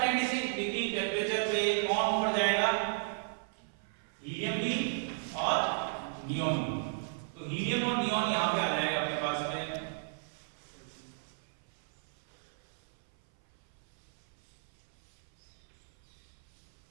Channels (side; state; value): left; silent; 54 dB below the other